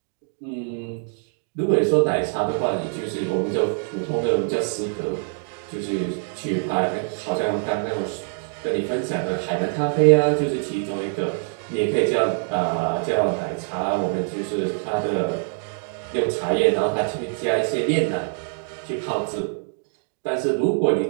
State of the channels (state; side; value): silent; left; 63 dB below the other